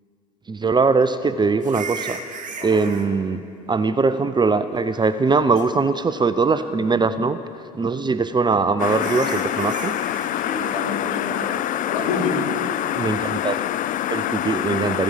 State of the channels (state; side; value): normal; both; correlation 0.48